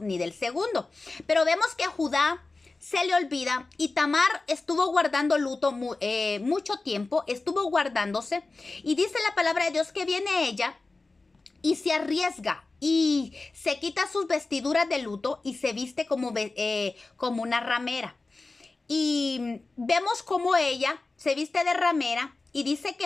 del segundo. Pero vemos que a Judá se le olvida y Tamar estuvo guardando luto mucho tiempo, estuvo guardándose, y dice la palabra de Dios que viene ella y se arriesga y se quita sus vestiduras de luto y se viste como una ramera. Y vemos cómo ella se viste de ramera y dice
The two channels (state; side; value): quieter; right; 3.5 dB